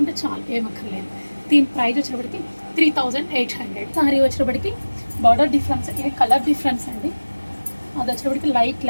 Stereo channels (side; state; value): both; inverted; correlation -1.00